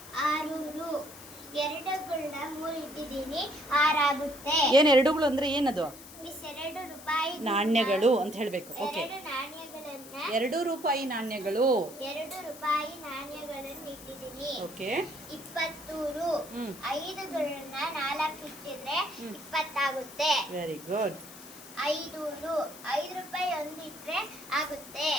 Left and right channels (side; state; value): left; noise; hiss, 17 dB below the sound